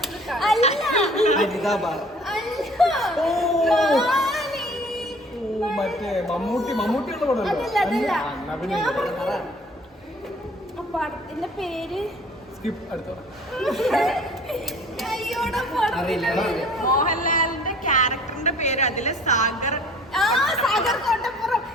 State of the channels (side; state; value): both; normal; correlation 0.51